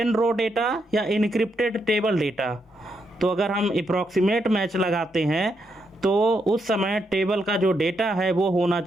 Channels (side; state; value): both; normal; correlation 0.80